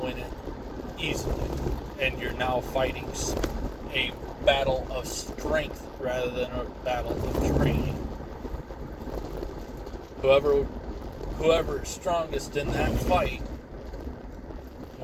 it easily, and you're now fighting a battle of strength rather than a battle of training. Whoever is strongest in that fight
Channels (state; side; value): identical; both; correlation 1.00